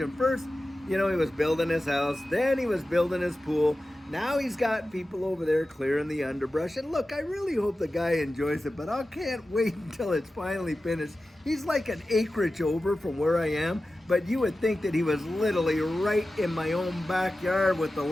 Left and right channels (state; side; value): normal; both; correlation 0.94